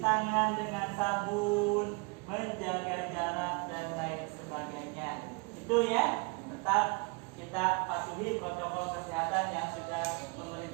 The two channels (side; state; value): left; quieter; 31.0 dB